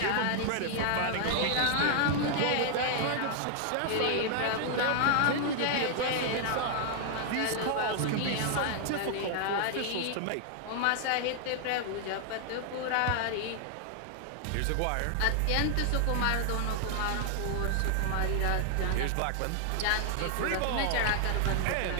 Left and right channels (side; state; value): both; different; correlation 0.00